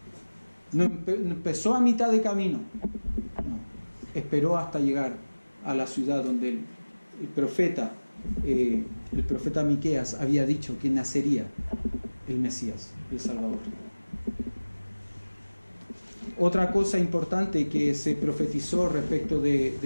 No empezó a mitad de camino. No. Esperó hasta llegar a la ciudad donde el profeta Miqueas había dicho que nacería el Mesías, el Salvador. Otra cosa importante que se profetizó respecto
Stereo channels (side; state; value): both; inverted; correlation -1.00